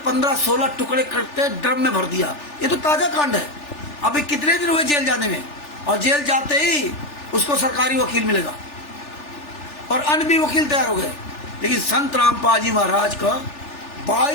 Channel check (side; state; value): right; late; 3.4 ms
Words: टुकड़े करके ड्रम में भर दिया, ये तो ताजा कांड है। अभी कितने दिन हुए जेल जाने में, और जेल जाते ही उसको सरकारी वकील मिलेगा, और अन्य भी वकील तैयार हो गए। लेकिन संत रामपाल जी महाराज का